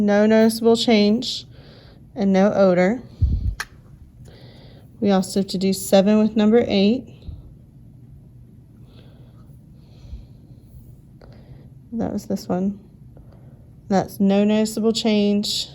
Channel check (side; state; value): both; identical; correlation 1.00